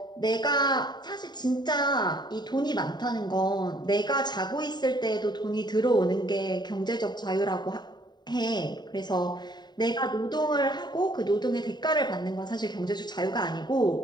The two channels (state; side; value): late; right; 0.21 ms